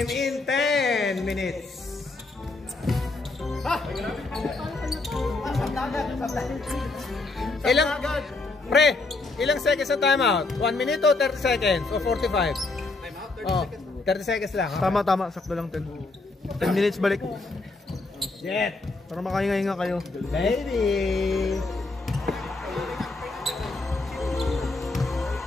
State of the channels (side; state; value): right; quieter; 3.4 dB